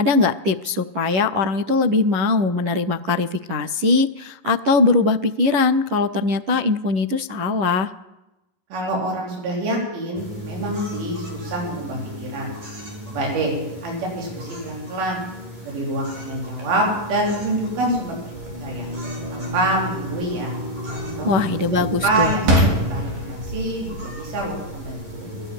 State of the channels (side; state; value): left; late; 11 ms